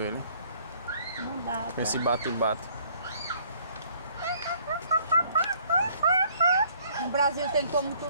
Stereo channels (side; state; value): both; inverted; correlation -0.61